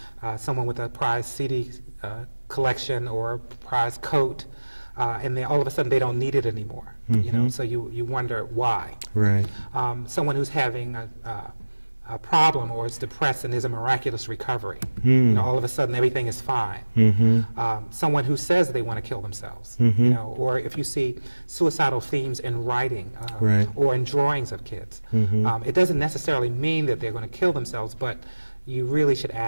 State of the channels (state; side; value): inverted; both; correlation -1.00